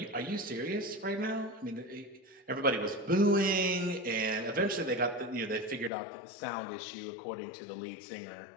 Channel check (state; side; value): drops out; right; at 5.9 s